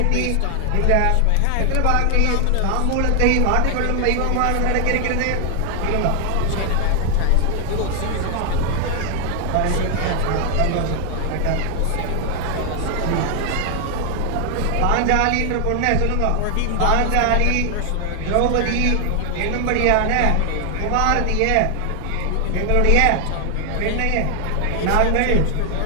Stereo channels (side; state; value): both; different; correlation 0.00